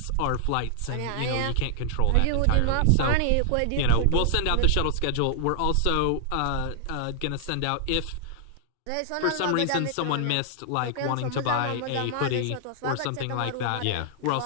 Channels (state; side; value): different; both; correlation -0.01